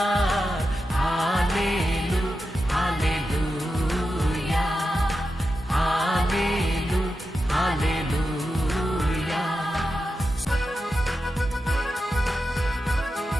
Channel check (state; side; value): normal; both; correlation 0.90